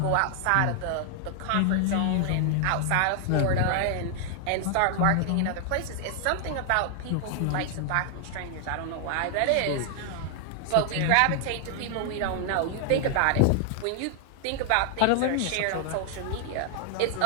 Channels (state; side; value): different; both; correlation 0.00